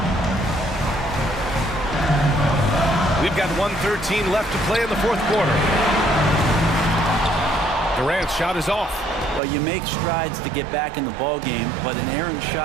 We've got 1:13 left to play in the fourth quarter. Durant's shot is off. Well, you make strides to get back in the ball game, but an errant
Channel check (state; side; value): drops out; left; at 9.4 s